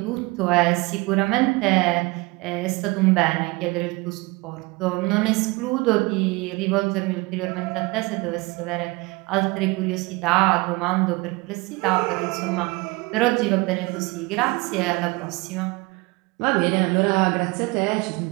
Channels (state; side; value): quieter; left; 24.6 dB